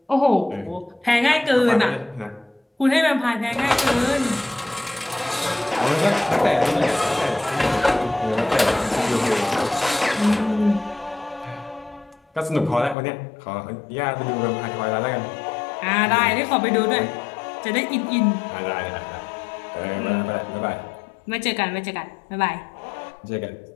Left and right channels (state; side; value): drops out; right; at 13.0 s